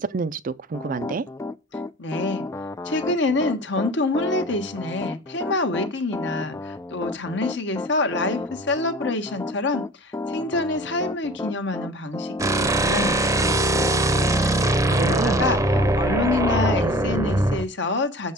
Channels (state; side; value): normal; both; correlation 0.41